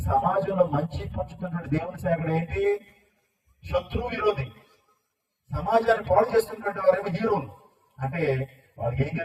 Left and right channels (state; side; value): identical; both; correlation 1.00